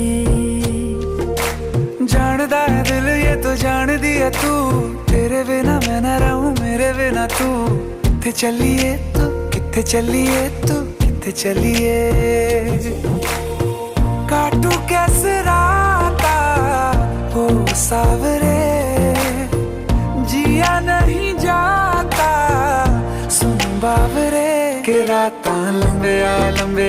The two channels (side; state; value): both; identical; correlation 1.00